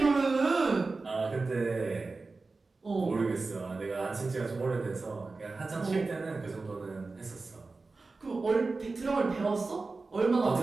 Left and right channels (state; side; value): quieter; left; 3.8 dB